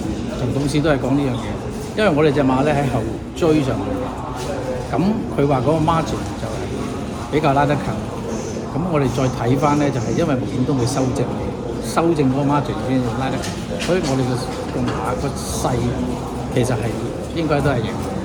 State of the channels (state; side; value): identical; both; correlation 1.00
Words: 同董事都係講呢樣嘢，因為我哋隻馬咧喺後追上去嘅，咁佢話嗰個 margin 就係比較拉得近，咁我哋再睇翻咧就係因為無線都會修正嗰個 margin 先拉得近，所以我哋個馬個勢其實係應該都係贏。